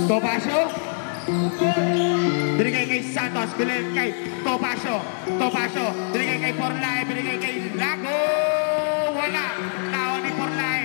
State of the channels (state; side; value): silent; right; digital silence